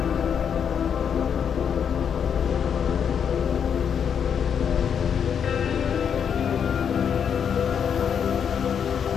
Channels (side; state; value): right; quieter; 7.7 dB